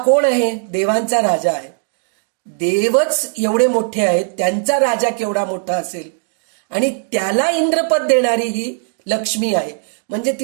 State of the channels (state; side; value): silent; left; digital silence